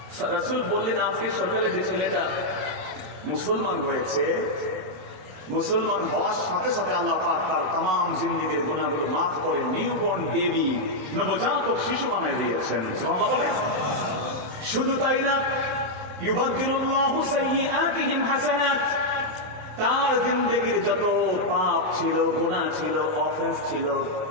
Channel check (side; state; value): left; late; 27 ms